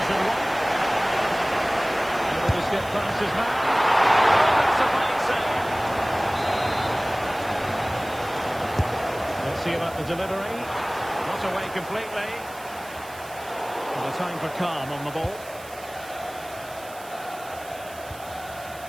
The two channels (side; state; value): right; noise; hiss, 18 dB below the sound